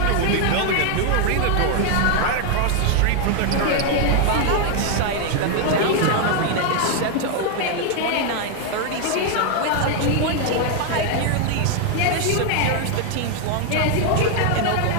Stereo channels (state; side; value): different; both; correlation 0.01